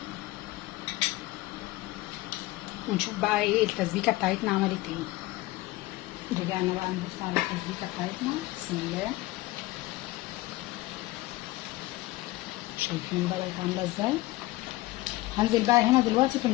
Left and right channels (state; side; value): quieter; right; 18.9 dB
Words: ونشوف بقى ايه التسبيكه بتاعتنا عملت ايه. رجعنا بقى نبص على التسبيكه بتاعتنا. بسم الله. شايفين بقى بقت عامله ازاي. هنزل بقى هنا دلوقتي في